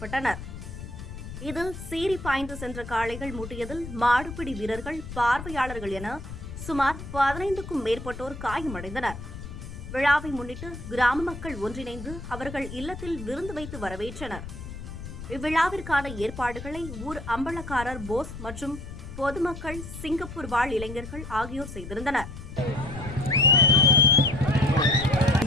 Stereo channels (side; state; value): left; noise; rumble, 10 dB below the sound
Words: இதில் சீறி பாய்ந்து சென்ற காளைகள் முட்டியதில் மாடுபிடி வீரர்கள், பார்வையாளர்கள் என சுமார் 15க்கும் மேற்பட்டோர் காயமடைந்தனர். விழாவை முன்னிட்டு கிராம மக்கள் ஒன்றிணைந்து அவர்கள் இல்லத்தில் விருந்து வைத்து வரவேற்றனர். இவ்விழாவிற்கான ஏற்பாடுகளை ஊர் அம்பலக்காரர் போஸ் மற்றும் பொதுமக்கள், சிங்கப்பூர் வாழ் இளைஞர்கள் ஆகியோர் செய்திருந்தனர்.